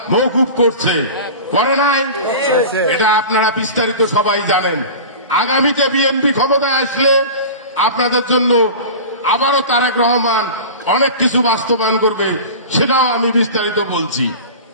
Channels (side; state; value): both; inverted; correlation -0.34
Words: মওকুফ করছে, করে নাই? এটা আপনারা বিস্তারিত সবাই জানেন। আগামীতে বিএনপি ক্ষমতায় আসলে আপনাদের জন্য আবারও তারেক রহমান অনেক কিছু বাস্তবায়ন করবে, সেটাও আমি বিস্তারিত বলছি।